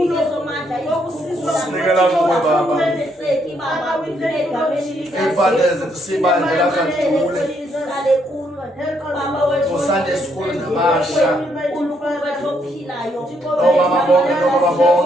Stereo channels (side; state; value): both; normal; correlation 0.73